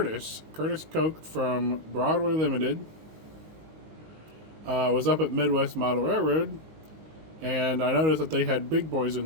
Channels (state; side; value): late; left; 19 ms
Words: Koch from Broadway Limited was up at Midwest Model Railroad, and I noticed that they had big boys